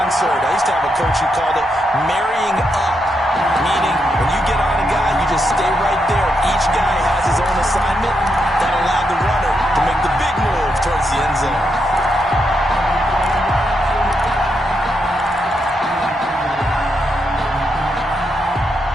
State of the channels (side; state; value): both; normal; correlation 0.82